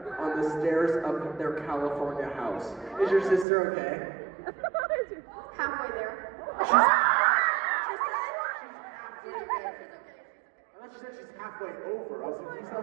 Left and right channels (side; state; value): left; drops out; at 3.5 s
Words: on the stairs of their California house. Is your sister okay? Halfway there. She's halfway there. I thought she said she's halfway over. I was like, she's